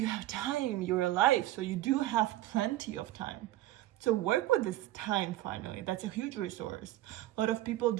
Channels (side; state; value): left; quieter; 15.2 dB